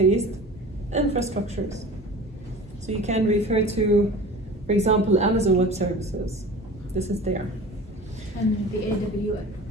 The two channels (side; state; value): both; normal; correlation 0.38